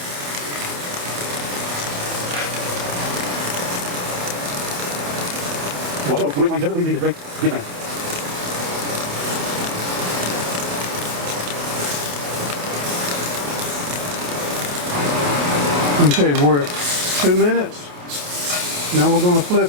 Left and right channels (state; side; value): late; left; 28 ms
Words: Okay, we're at 2 minutes. Now we're going to